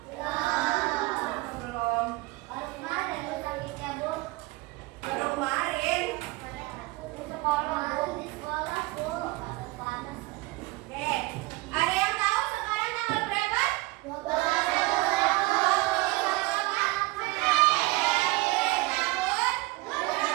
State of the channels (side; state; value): left; quieter; 21.5 dB